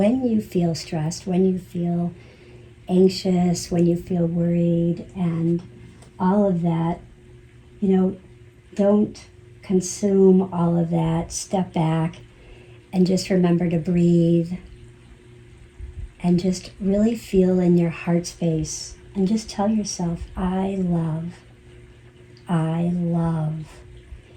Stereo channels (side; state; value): both; identical; correlation 1.00